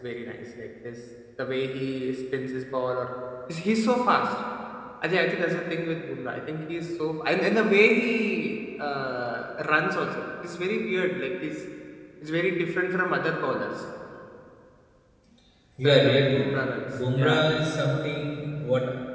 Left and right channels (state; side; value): identical; both; correlation 1.00